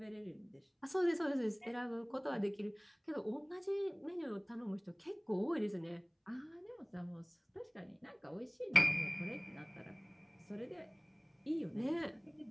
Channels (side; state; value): both; identical; correlation 1.00